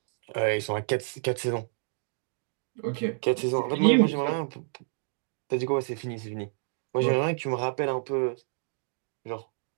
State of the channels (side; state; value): left; silent; digital silence